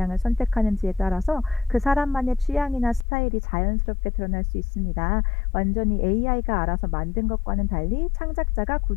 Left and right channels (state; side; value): drops out; right; at 3.1 s